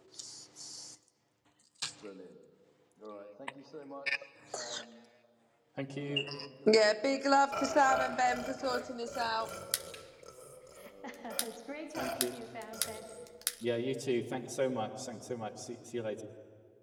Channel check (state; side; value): identical; both; correlation 1.00